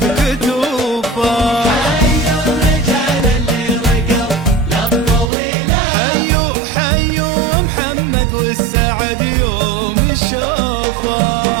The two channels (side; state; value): left; drops out; at 5.3 s